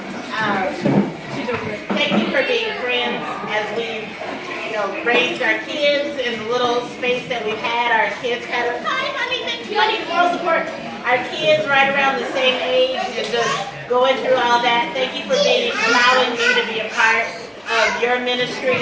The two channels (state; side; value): identical; both; correlation 1.00